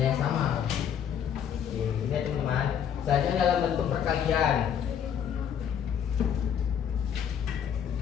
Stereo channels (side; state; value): right; quieter; 8.6 dB